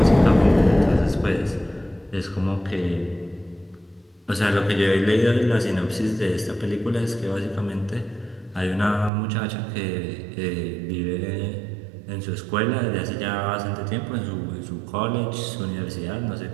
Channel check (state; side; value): drops out; left; at 9.1 s